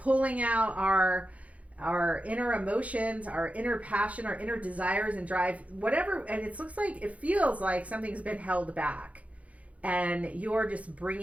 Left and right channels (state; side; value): late; left; 0.066 ms